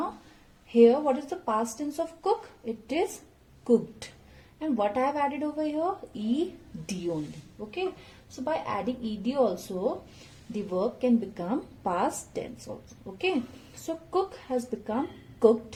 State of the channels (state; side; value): identical; both; correlation 1.00